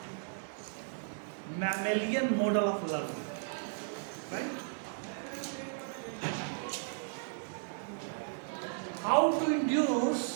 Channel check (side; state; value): left; silent; digital silence